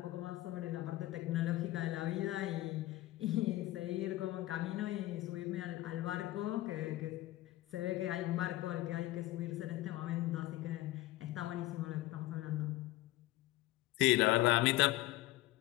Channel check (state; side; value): quieter; right; 16.8 dB